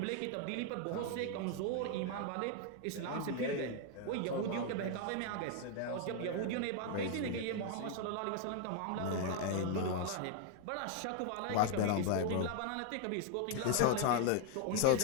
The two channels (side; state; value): both; different; correlation 0.00